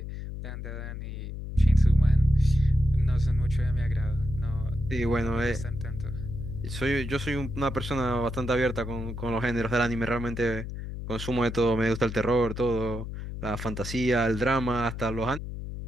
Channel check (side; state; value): left; noise; hum, 7 dB below the sound